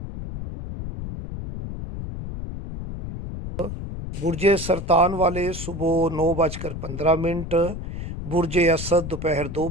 برج سرطان والے صبح 9:15۔ برج اسد دوپہر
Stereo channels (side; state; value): left; noise; rumble, 7 dB below the sound